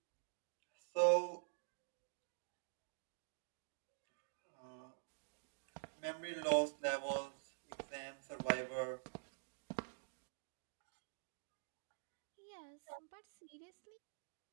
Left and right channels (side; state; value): left; silent; digital silence